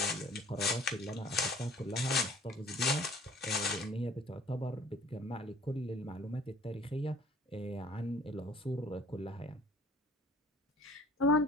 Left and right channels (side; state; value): both; normal; correlation 0.52